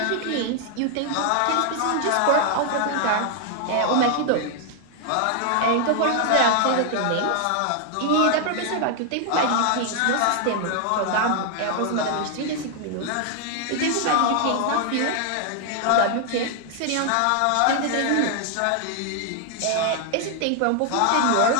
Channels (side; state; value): both; different; correlation 0.00